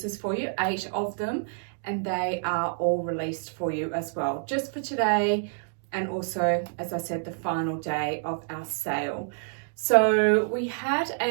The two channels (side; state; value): left; silent; digital silence